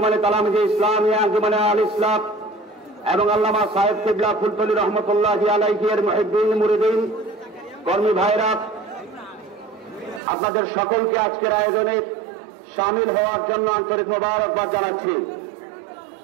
তালামিজে ইসলামিয়া আঞ্জুমানে আল ইসলাম এবং আল্লামা সাহেব কিবলা ফুলতলি রহমতুল্লাহি আলাইহি এর মুহিব্বিন মুরিদিন কর্মী ভাইরা, আপনাদের সকলকে আজকের আয়োজনে শামিল হওয়ার জন্য আন্তরিক মোবারকবাদ জানাচ্ছি।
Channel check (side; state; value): left; drops out; at 10.2 s